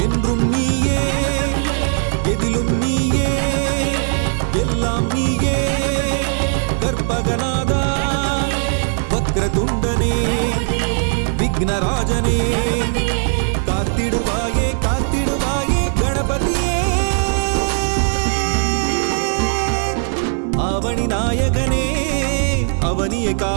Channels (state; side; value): silent; left; digital silence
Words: என்றும் நீயே எதிலும் நீயே எல்லாம் நீயே கற்பகநாதா வக்ரதுண்டனே விக்னராஜனே காத்திடுவாயே காத்திடுவாயே கணபதியே அவனி நாயகனே அவனியை